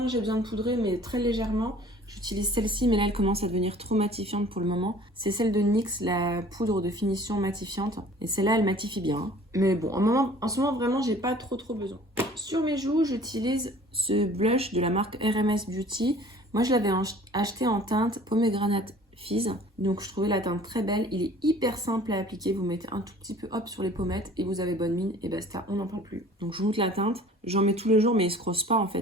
j'ai besoin de poudrer, mais très légèrement, j'utilise celle-ci, mais là elle commence à devenir trop matifiante pour le moment. C'est celle de NYX, la poudre de finition matifiante. Et celle-là, elle matifie bien. Mais bon, en ce moment vraiment, j'ai pas trop besoin. Sur mes joues, j'utilise ce blush de la marque RMS Beauty. Moi, je l'avais acheté en teinte Pomegranate Fizz. Donc, je trouvais la teinte très belle. Il est hyper simple à appliquer. Vous mettez un tout petit peu hop sur les pommettes et vous avez bonne mine et basta, on n'en parle plus. Donc, je vous montre la teinte. J'en mets tous les jours, mais il se crosse pas en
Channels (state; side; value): normal; both; correlation 0.49